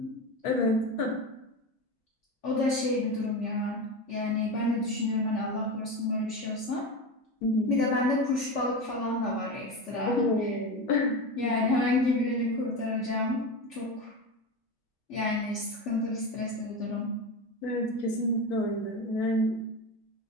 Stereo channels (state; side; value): normal; both; correlation 0.22